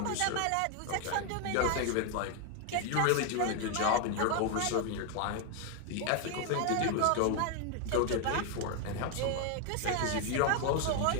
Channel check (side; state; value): both; different; correlation 0.01